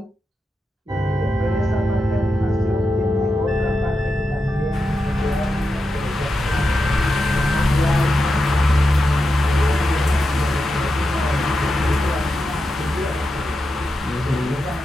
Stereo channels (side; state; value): both; normal; correlation 0.88